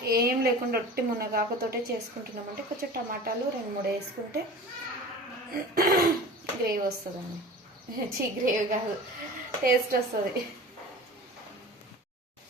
ఏం లేకుండా ఒట్టి మునగాకుతోటే చేసుకుంటున్నామంటే కొంచెం టమాటాలు 2-3 వేసుకుంటే గ్రేవీ వస్తుందండి. గ్రేవీ కాదు, టేస్ట్ వస్తుంది.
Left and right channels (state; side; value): normal; both; correlation 0.38